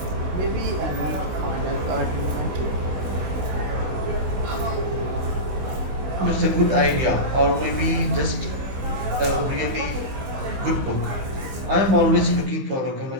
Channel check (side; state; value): left; late; 15 ms